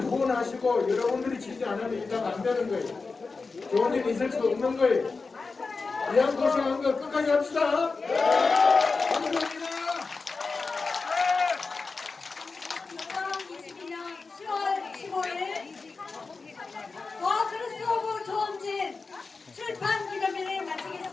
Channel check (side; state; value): right; quieter; 4.2 dB